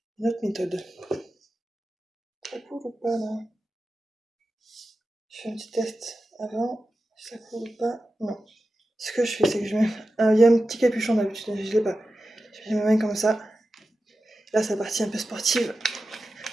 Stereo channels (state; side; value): normal; both; correlation 0.92